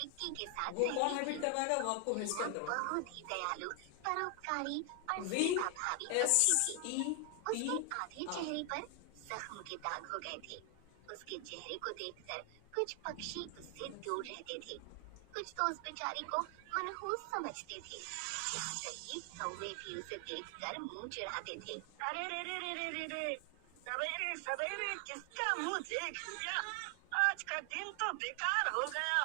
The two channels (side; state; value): both; different; correlation 0.00